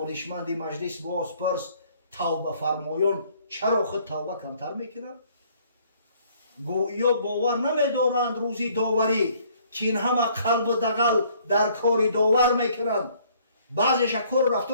مجلس باز پرس، توبه فرمایان چرا خود توبه کمتر میکنن؟ گویا باور نمیدارند روزی داوری که این همه قلب و دغل در کاری داور میکنند. بعضیش کار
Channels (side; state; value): both; inverted; correlation -0.61